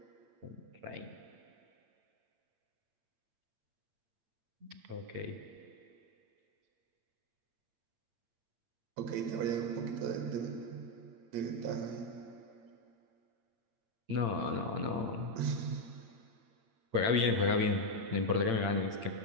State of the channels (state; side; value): late; left; 8.8 ms